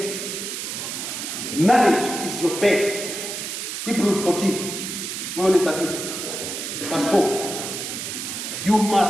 Marriage is your bed. Hebrews 14, 13, verse 4. You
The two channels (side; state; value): right; noise; hiss, 5 dB below the sound